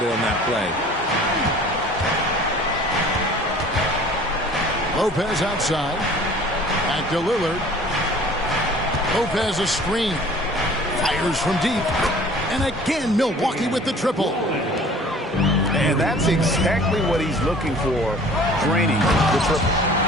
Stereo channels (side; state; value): both; normal; correlation 0.48